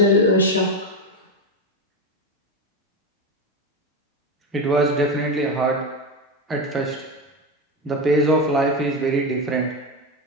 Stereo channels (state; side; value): normal; both; correlation 0.15